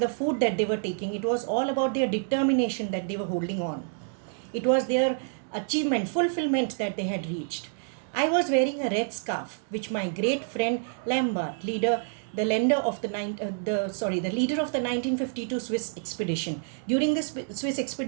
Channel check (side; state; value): left; silent; digital silence